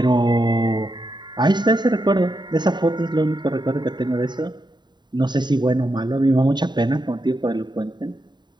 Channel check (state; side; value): late; left; 0.21 ms